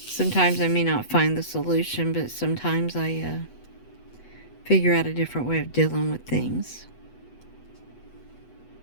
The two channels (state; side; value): late; right; 8.1 ms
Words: Sometimes I may not find the solution, but sometimes I figure out a different way of dealing with things.